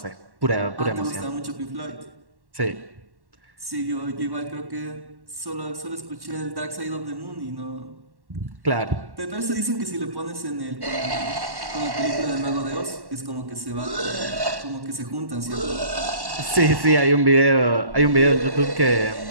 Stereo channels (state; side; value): late; left; 1.1 ms